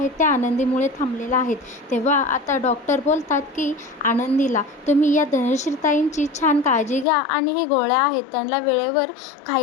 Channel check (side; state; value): right; drops out; at 7.1 s